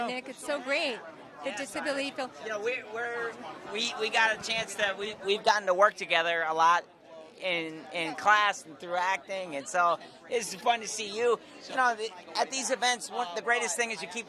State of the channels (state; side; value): identical; both; correlation 1.00